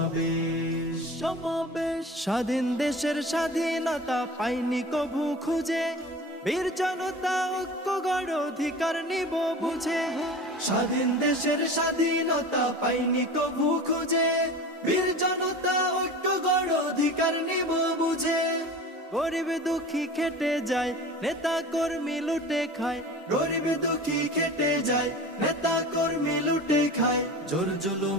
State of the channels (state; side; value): normal; both; correlation 0.36